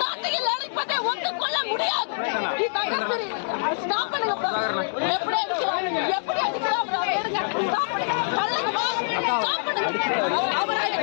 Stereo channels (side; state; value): right; silent; digital silence